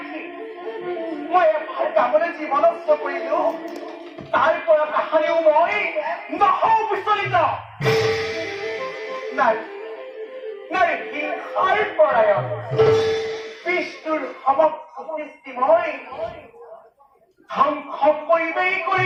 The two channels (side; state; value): both; identical; correlation 1.00